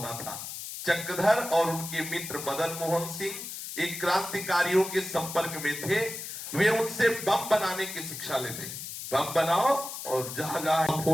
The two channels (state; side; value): noise; left; hiss, 8 dB below the sound